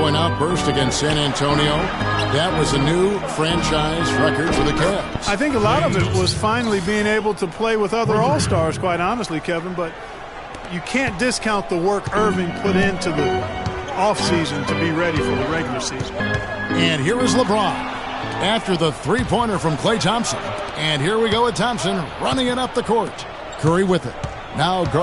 outburst against San Antonio. That was a new franchise record for the Cavs. I think a lot of it was finally being able to play with other all-stars, quite honestly, Kevin, but you can't discount the work Irving put into the offseason to be ready for the regular season. And here is LeBron after the three-pointer from Klay Thompson. And here we go with Thompson running it up the court. Curry with it. Now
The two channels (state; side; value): identical; both; correlation 1.00